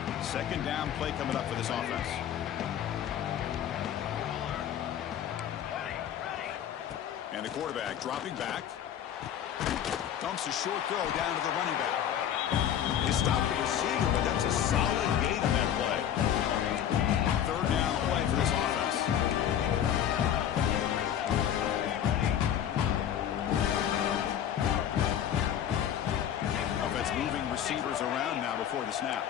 Second down play coming up for this offense. And the quarterback dropping back. Dumps a short throw down to the running back. He stopped the receiver, but that's a solid gain on that play. 3rd down play for this offense. Offense moving receivers around now before the snap.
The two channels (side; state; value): right; quieter; 9.9 dB